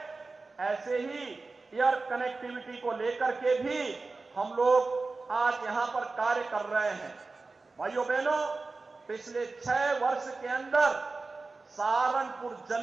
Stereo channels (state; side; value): quieter; left; 3.8 dB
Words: ऐसे ही एयर कनेक्टिविटी को लेकर के भी हम लोग आज यहां पर कार्य कर रहे हैं। भाइयों बहनों, पिछले 6 वर्ष के अंदर सहारनपुर